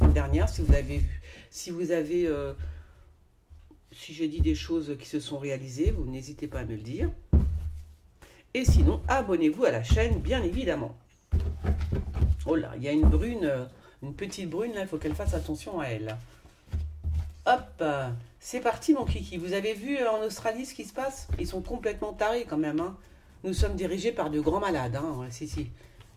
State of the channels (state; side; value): identical; both; correlation 1.00